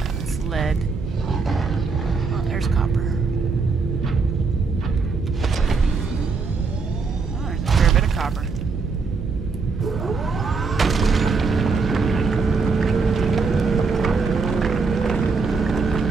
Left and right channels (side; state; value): left; quieter; 4.6 dB